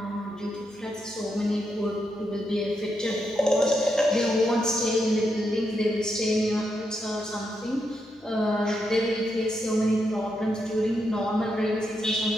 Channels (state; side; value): normal; both; correlation 0.82